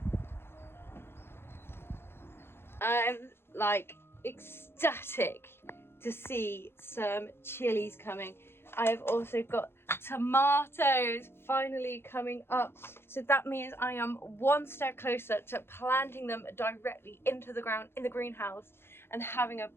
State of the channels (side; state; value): right; late; 0.11 ms